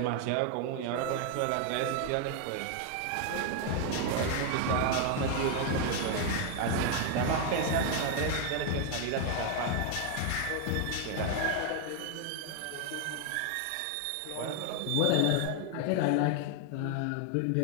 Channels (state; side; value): different; both; correlation 0.00